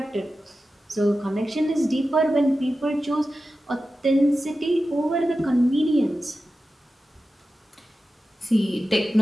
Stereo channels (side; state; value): both; normal; correlation 0.93